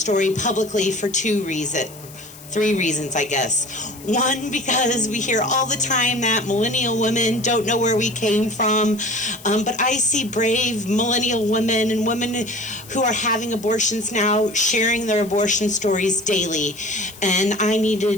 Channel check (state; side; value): noise; left; hiss, 19 dB below the sound